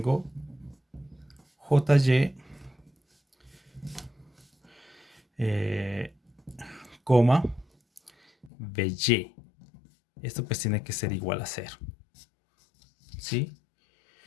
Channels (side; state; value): right; drops out; at 8.5 s